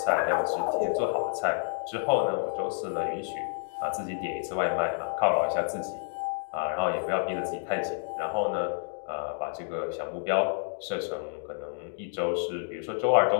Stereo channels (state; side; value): silent; right; digital silence